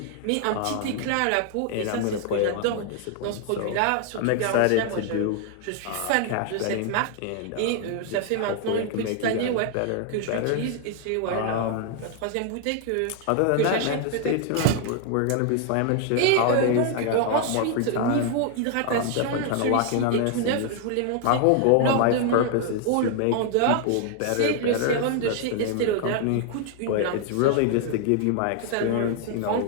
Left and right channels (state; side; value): different; both; correlation 0.00